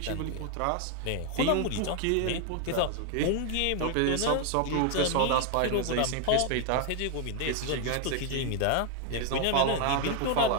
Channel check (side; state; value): both; different; correlation 0.00